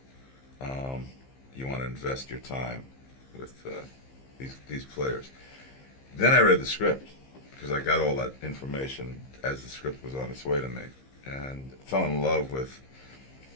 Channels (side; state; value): right; late; 15 ms